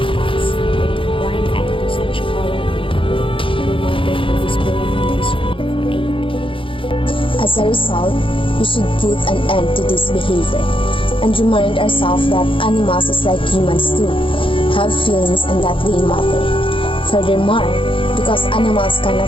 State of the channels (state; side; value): late; right; 0.25 ms